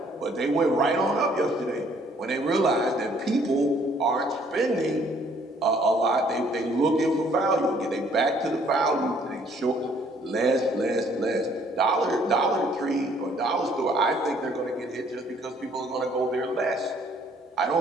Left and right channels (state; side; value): normal; both; correlation 0.62